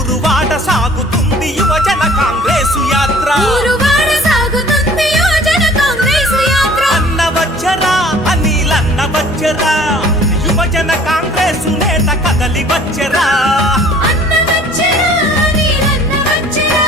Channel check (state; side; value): normal; both; correlation 0.51